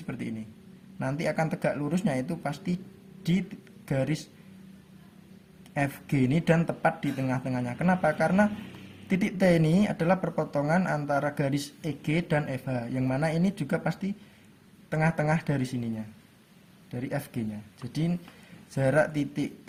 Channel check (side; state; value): both; identical; correlation 1.00